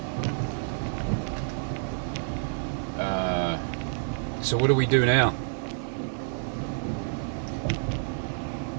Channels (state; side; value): silent; left; digital silence